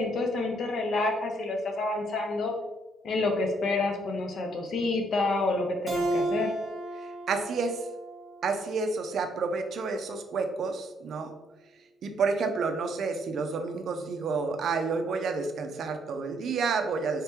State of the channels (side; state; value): both; normal; correlation 0.69